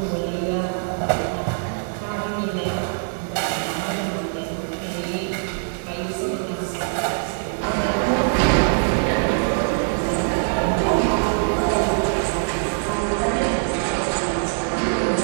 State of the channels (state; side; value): silent; left; 64 dB below the other